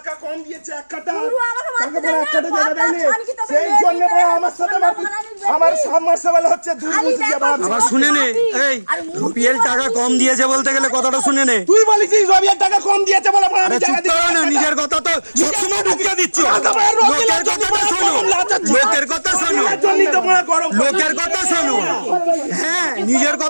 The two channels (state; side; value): inverted; both; correlation -1.00